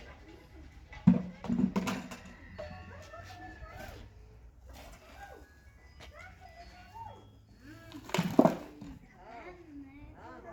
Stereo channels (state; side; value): identical; both; correlation 1.00